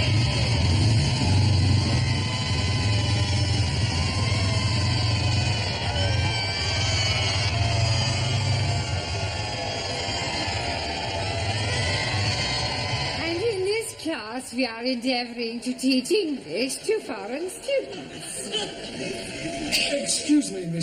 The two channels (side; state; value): both; identical; correlation 1.00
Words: Class, we are endeavouring to teach English to foreign students. Excuse me,